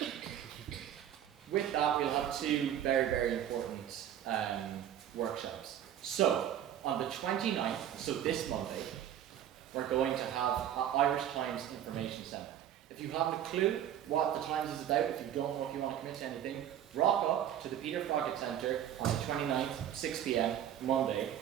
with that, we'll have two very, very important workshops. So, on the 29th, so this Monday, we're going to have an Irish Times Information Centre. If you haven't a clue what the Times is about, if you don't know if you want to commit to anything, rock up to the Peter Froggatt Centre on the 29th, 6 p.m, Monday,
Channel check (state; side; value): quieter; left; 10.5 dB